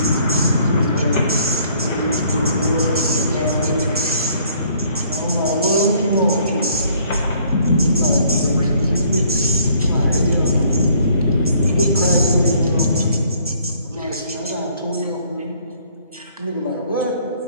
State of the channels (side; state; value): both; inverted; correlation -0.61